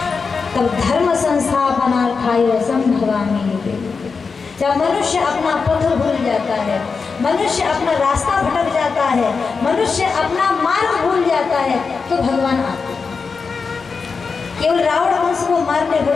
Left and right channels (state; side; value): quieter; right; 5.0 dB